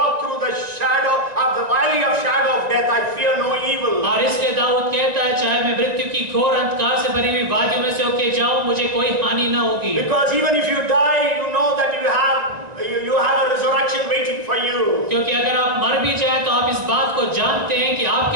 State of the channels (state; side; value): late; left; 2.0 ms